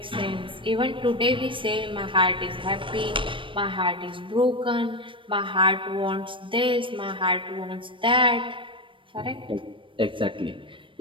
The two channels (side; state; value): left; late; 0.25 ms